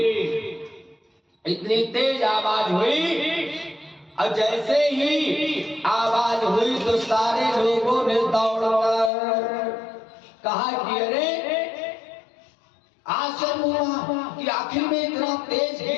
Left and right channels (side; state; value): right; drops out; at 9.1 s